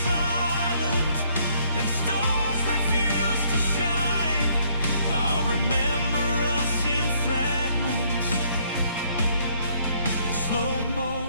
silent and stars refuse to shine, I'll remember us in fragments, in slow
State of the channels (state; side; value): inverted; both; correlation -0.67